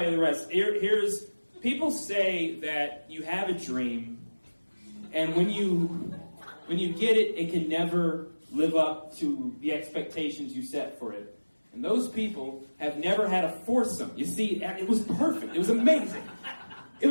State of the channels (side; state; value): both; inverted; correlation -1.00